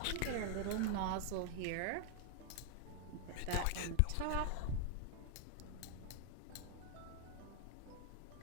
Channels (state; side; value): different; both; correlation 0.00